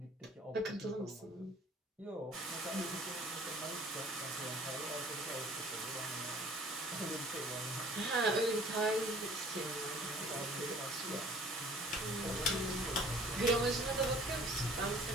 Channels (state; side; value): normal; both; correlation 0.52